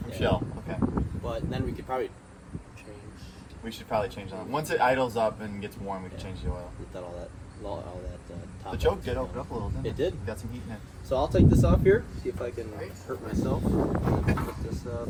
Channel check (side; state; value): both; identical; correlation 1.00